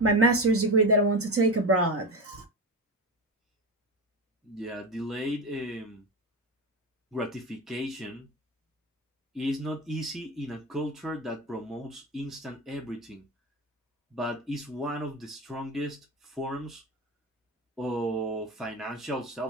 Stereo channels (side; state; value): both; normal; correlation 0.21